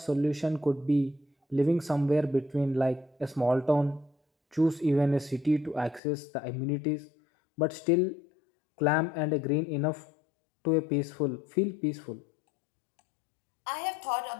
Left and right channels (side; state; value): right; drops out; at 6.0 s